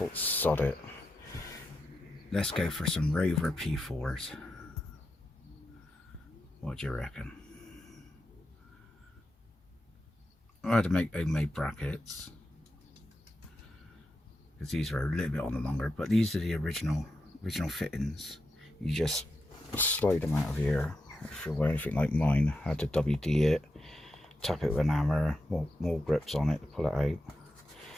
sod it. Let's go for some Rover P4s. What do you reckon? I had to make homemade brackets, because these are a little bit on the longer, but these are the original fittings. You just slide them out of here. If you were anything like mine, I had to WD it, tap it with an hammer, more grips on it to pull it out,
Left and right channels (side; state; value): both; normal; correlation 0.87